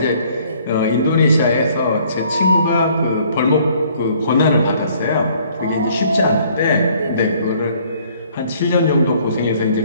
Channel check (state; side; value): inverted; both; correlation -0.60